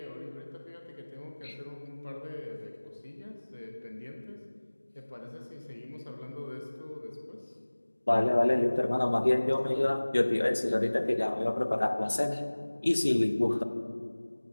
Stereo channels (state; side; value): inverted; both; correlation -1.00